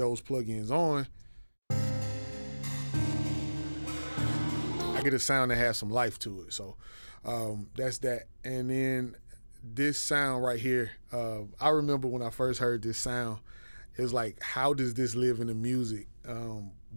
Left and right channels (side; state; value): both; inverted; correlation -1.00